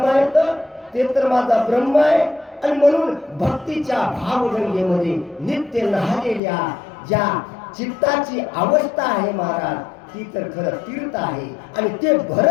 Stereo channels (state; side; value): drops out; right; at 6.4 s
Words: आहेत ते तर माझा ब्रह्म आहे. आणि म्हणून भक्तीच्या भावगंगेमध्ये नित्य न्हालेल्या ज्या चित्ताची अवस्था आहे महाराज ती तर खरं तीर्थ आहे. आणि ते